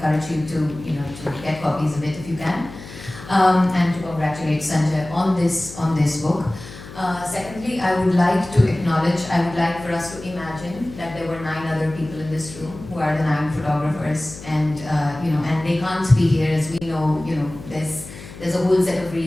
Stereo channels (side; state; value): left; noise; hum, 15 dB below the sound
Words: you to get copies of it if you can, and to congratulate Sanjay on this book. Secondly, I would like for us to imagine that there were 9 other people in this room who are the 9 photographers, and and they can't be here, as we know. There's a whole set of